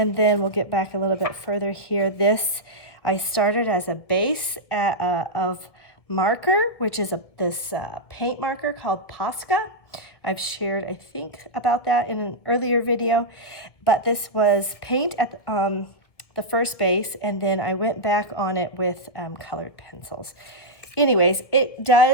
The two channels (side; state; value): right; late; 1.6 ms